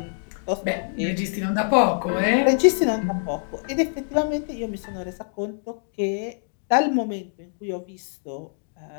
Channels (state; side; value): silent; right; digital silence